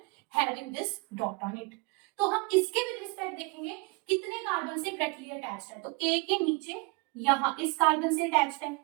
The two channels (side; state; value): left; quieter; 28.5 dB